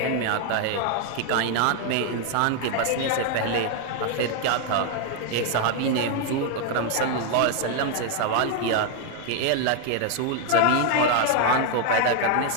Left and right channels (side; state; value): both; different; correlation 0.00